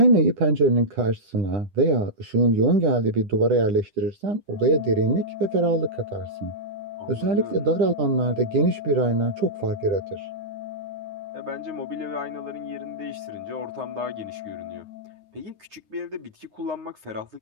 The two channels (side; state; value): left; late; 10 ms